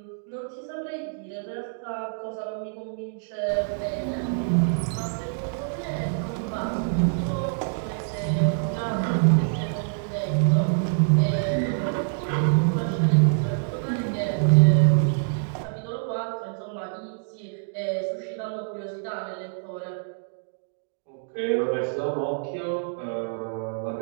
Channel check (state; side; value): silent; left; digital silence